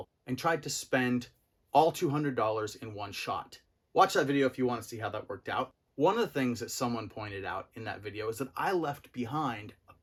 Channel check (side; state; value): both; identical; correlation 1.00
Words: and tried to spend all $200 in one shot. Watch that video if you want to see how that worked out. One of the things that someone pointed out in that video is that I left behind a